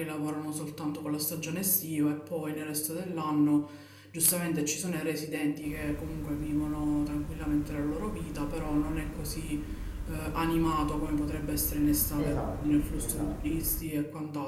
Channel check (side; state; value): both; identical; correlation 1.00